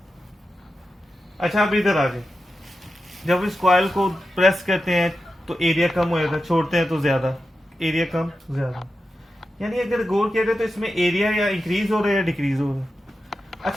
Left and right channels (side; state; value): both; normal; correlation 0.91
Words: अच्छा, अब इधर आ जाए, जब इस कॉइल को प्रेस करते हैं तो एरिया कम हो जाता है, छोड़ते हैं तो ज्यादा, एरिया कम ज्यादा। यानी अगर गौर किया जाए तो इसमें एरिया या इंक्रीज हो रहा है या डिक्रीज हो रहा है।